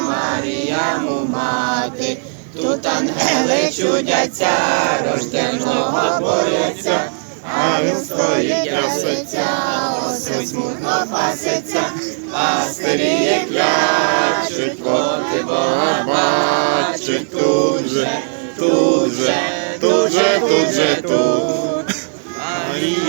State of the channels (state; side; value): silent; left; digital silence